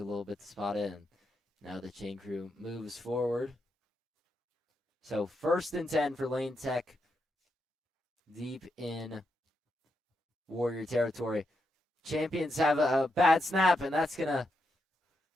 little bit to spot it, and now the chain crew moves forward. So 1st and 10 for Lane Tech, deep in Warrior territory. Champions have a bad snap, and that's going to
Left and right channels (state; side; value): normal; both; correlation 0.83